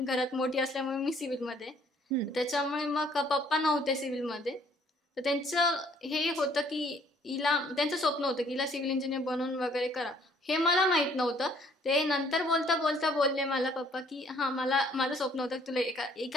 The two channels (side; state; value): both; normal; correlation 0.61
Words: घरात मोठी असल्यामुळे मी सिव्हिलमध्ये, त्याच्यामुळे मग पप्पा नव्हते सिव्हिलमध्ये. तर त्यांचं हे होतं की त्यांचं स्वप्न होतं की हिला सिव्हिल इंजिनियर बनवून वगैरे करा. हे मला माहित नव्हतं. ते नंतर बोलता बोलता बोलले मला पप्पा की माझं स्वप्न होतं की तुला